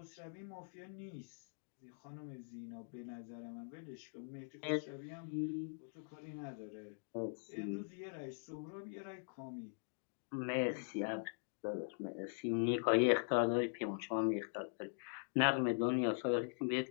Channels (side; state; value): right; silent; digital silence